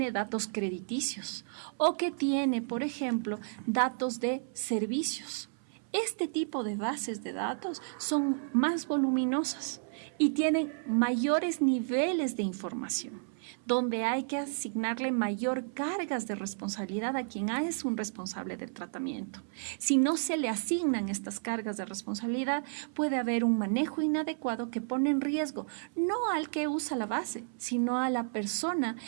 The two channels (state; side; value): silent; left; 56 dB below the other